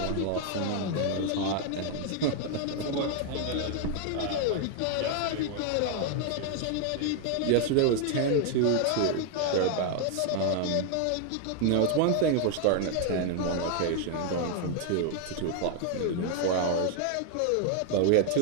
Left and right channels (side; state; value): both; different; correlation 0.00